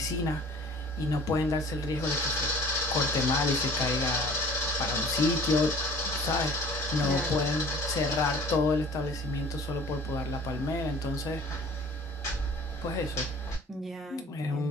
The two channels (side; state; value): both; normal; correlation 0.47